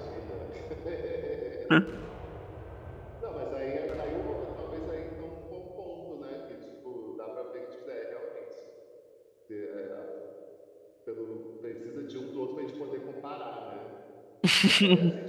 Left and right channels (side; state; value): both; identical; correlation 1.00